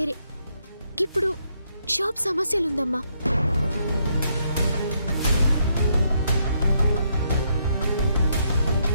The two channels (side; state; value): both; inverted; correlation -0.75